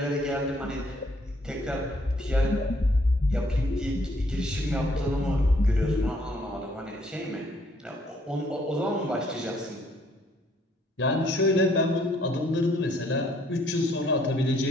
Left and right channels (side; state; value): both; normal; correlation 0.66